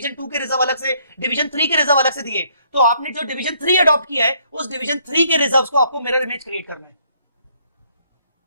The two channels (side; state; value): both; inverted; correlation -0.67